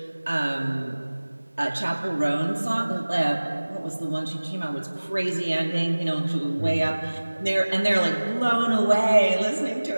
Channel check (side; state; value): both; inverted; correlation -1.00